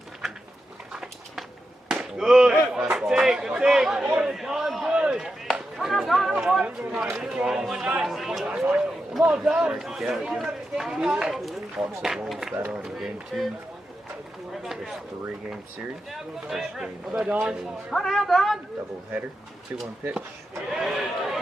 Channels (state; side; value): normal; both; correlation 0.88